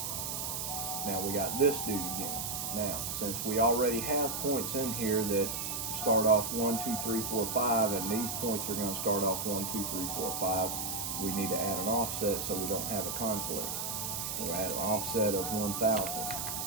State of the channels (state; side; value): noise; right; hiss, 3 dB below the sound